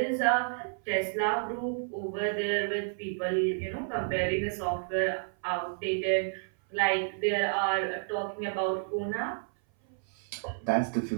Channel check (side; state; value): left; silent; 57 dB below the other